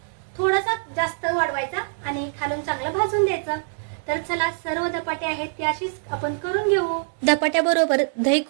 जास्त वाढवायचा आणि खालून चांगलं भाजून द्यायचं. तर चला सर्व धपाटे आहेत ते अशीच आपण करून घेऊ. धपाट्याबरोबर दही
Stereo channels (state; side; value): silent; left; 63 dB below the other